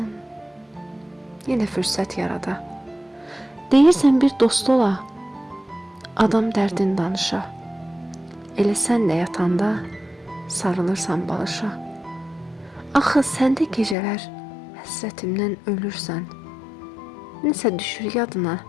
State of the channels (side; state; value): right; drops out; at 14.0 s